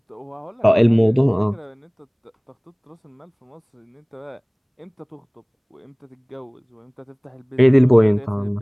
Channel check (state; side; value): identical; both; correlation 1.00